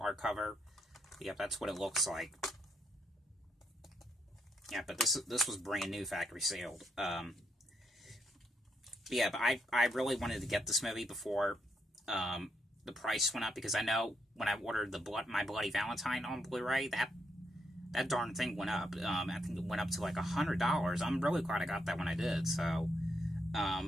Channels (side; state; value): both; normal; correlation 0.78